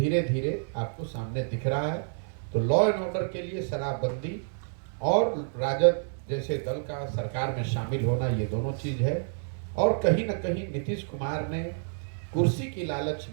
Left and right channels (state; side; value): silent; left; 59 dB below the other